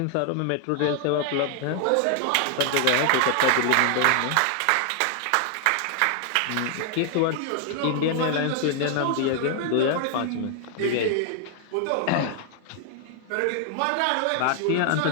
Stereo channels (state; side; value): different; both; correlation 0.00